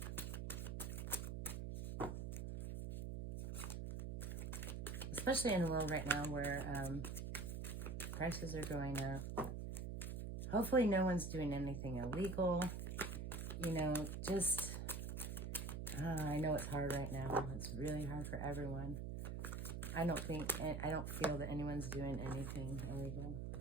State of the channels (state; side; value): noise; right; hum, 4 dB below the sound